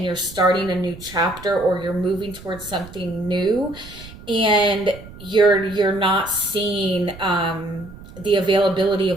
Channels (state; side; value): noise; right; rumble, 17 dB below the sound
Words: you're starting a new chapter, or you're moving towards something new, and you're not seeing the availability